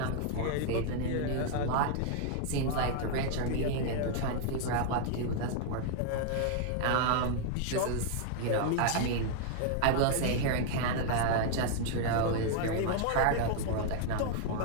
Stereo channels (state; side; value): different; both; correlation 0.00